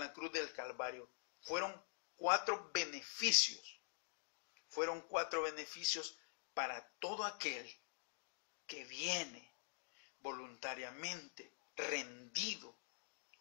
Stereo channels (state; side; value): silent; right; digital silence